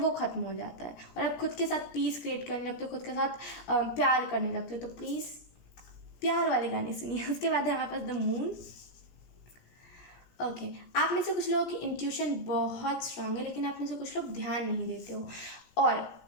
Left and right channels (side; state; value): right; late; 17 ms